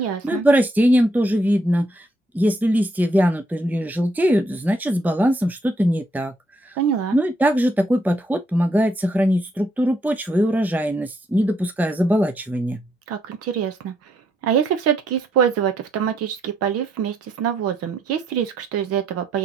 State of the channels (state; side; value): normal; both; correlation 0.74